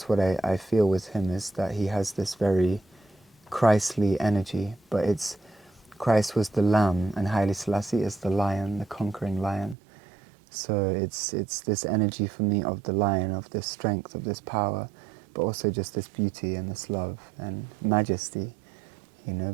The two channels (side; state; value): left; drops out; at 9.8 s